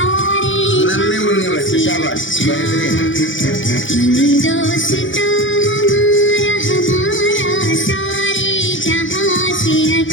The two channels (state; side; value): late; right; 0.56 ms